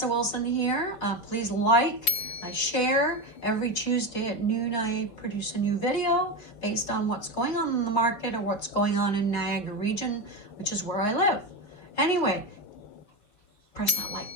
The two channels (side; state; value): right; late; 4.8 ms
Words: Wilson here. Please like, share. Every Tuesday at noon, I produce a new video based on what's going on in the market or what's going on in Niagara Region, which is where I live. Anyway, press that like